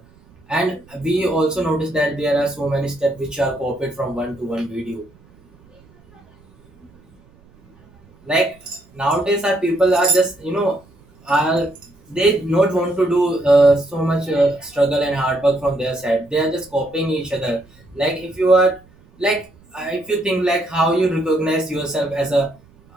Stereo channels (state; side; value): noise; right; rumble, 28 dB below the sound